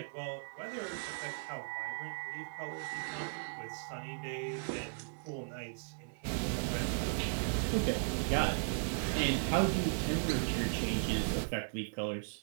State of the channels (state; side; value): silent; left; 53 dB below the other